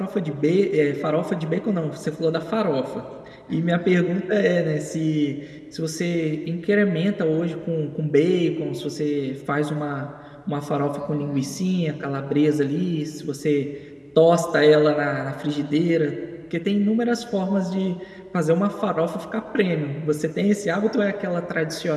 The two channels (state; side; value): identical; both; correlation 1.00